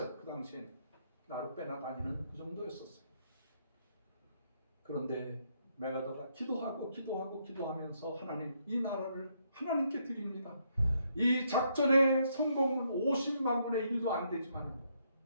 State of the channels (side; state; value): both; inverted; correlation -0.74